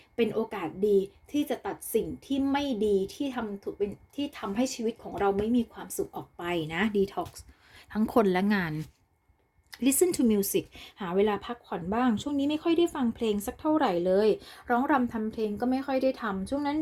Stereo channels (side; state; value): both; identical; correlation 1.00